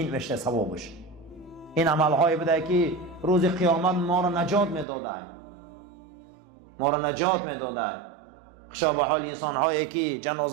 میشه ثوابش. این عملهای بده که روز قیامت ما را نجات میداده، ما را نجات میداده. خشا به حال انسان هایی که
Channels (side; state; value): left; drops out; at 4.9 s